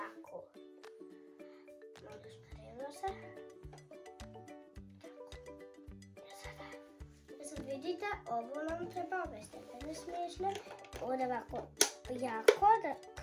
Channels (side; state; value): both; identical; correlation 1.00